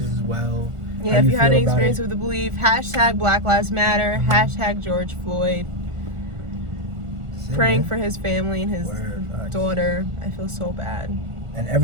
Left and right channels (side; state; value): left; late; 1.4 ms